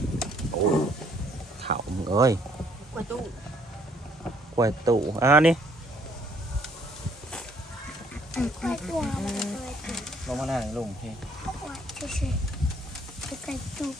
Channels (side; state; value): both; normal; correlation 0.64